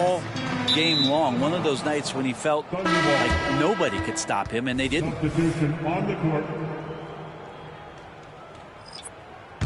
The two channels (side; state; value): both; identical; correlation 1.00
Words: game long. One of those nights when he felt like nobody could stop him, and they didn't. Substitution on the court.